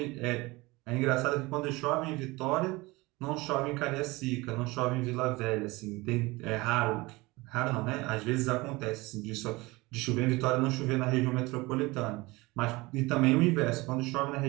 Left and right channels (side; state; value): left; quieter; 22.4 dB